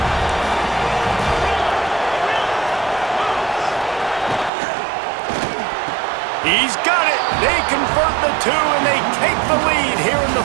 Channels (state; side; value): drops out; left; at 4.5 s